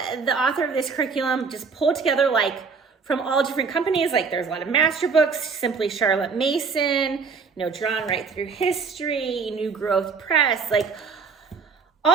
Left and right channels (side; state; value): left; quieter; 5.2 dB